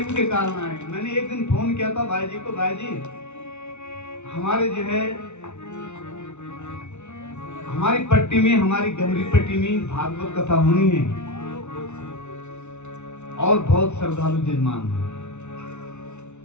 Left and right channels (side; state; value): right; late; 0.82 ms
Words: के कारण आए। मैंने एक दिन फोन किया था भाई जी को, भाई जी हमारे जो है हमारी पट्टी में हमारी गमरी पट्टी में भागवत कथा होनी है और बहुत श्रद्धालु जजमान है